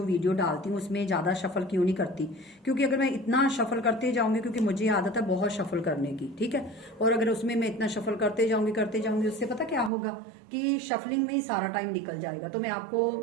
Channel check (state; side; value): drops out; left; at 9.9 s